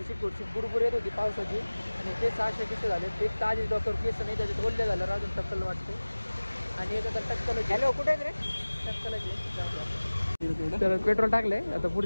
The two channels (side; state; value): both; inverted; correlation -1.00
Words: बुरबुर येत होती पावसाची आणि केस असे कसे झाले. एक ताजी डॉक्टर केस नाही, त्याच्यात ओल्ले झालं, अजून टक्कल वाटते. आणि याचं तर टक्कल हॅलो कुठे रे टक्कल. तर पेट्रोल टाकलंय, आता